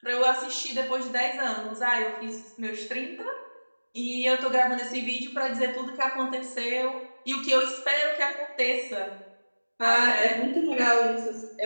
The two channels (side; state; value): both; inverted; correlation -1.00